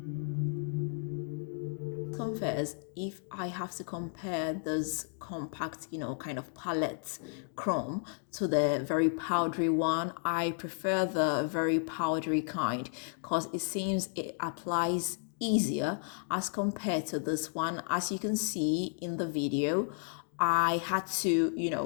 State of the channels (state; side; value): silent; right; 56 dB below the other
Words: Confess, if I have to compare this compact, kind of palette chrome to the very powdery one, I prefer the very powdery kind because it seems it applies easier as compared to this one. As you can see in the video, I had to,